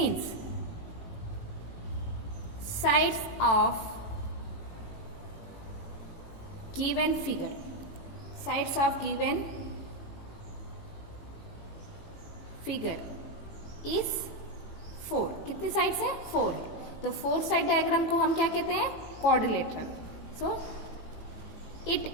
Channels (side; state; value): right; late; 18 ms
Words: sides of given figure, sides of given figure is 4। कितनी साइड्स है? 4 है। तो 4 साइड डायग्राम को हम क्या कहते हैं? Quadrilateral. So it